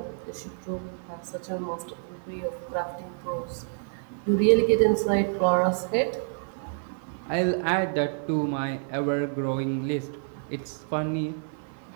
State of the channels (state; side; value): silent; left; 59 dB below the other